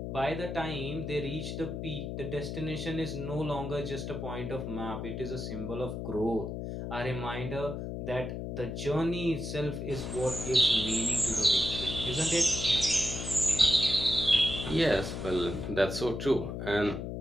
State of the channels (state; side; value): noise; left; hum, 5 dB below the sound